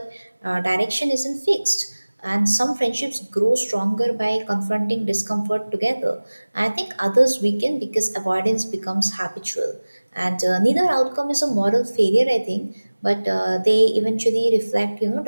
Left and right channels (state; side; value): inverted; both; correlation -1.00